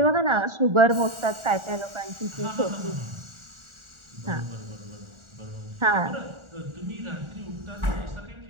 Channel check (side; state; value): left; late; 1.4 ms